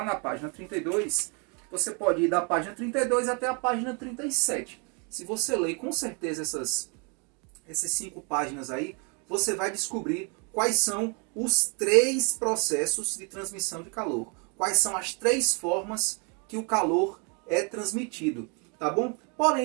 na página 32, você pode ir da página 32 até a página 37. Se você ler com certeza essas 5 páginas aí, você vai descobrir quais são os 3 processos de transmissão de calor. Quais são as 3 formas que o calor é transmitido, tá bom?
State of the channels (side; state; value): left; quieter; 35.0 dB